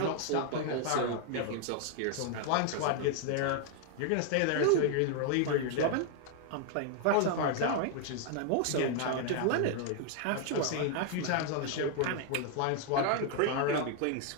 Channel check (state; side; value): different; both; correlation 0.00